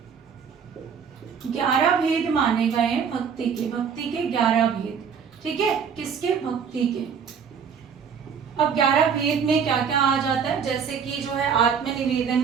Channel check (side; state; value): left; quieter; 6.8 dB